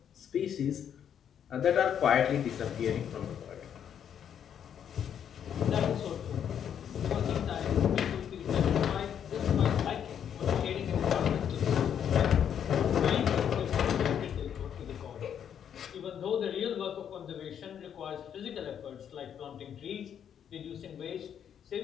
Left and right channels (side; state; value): right; quieter; 8.8 dB